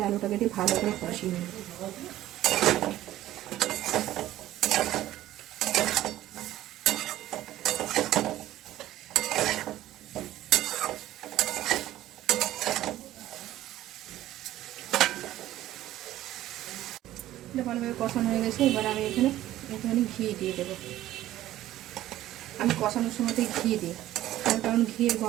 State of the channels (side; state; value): left; quieter; 14.2 dB